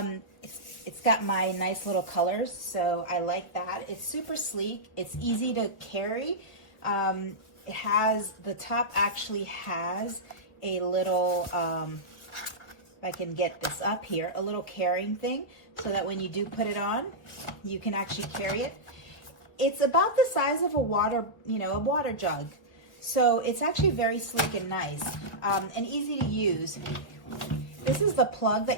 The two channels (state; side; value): late; right; 1.6 ms